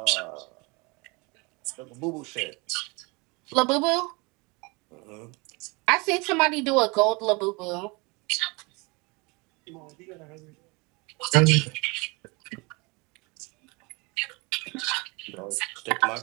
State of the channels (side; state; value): left; quieter; 27.7 dB